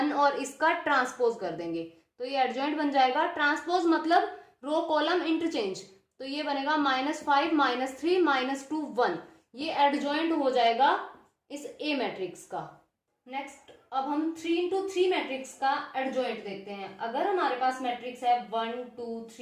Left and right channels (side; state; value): both; identical; correlation 1.00